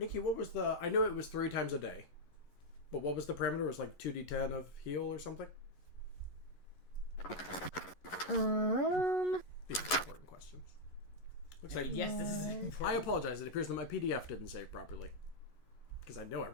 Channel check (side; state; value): right; late; 11 ms